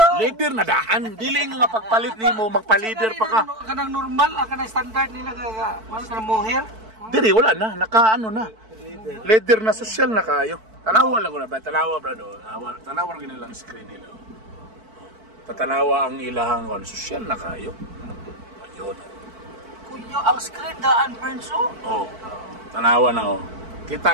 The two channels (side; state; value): left; late; 4.5 ms